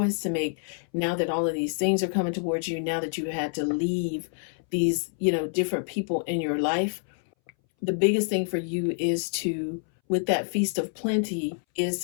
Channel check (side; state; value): right; silent; 60 dB below the other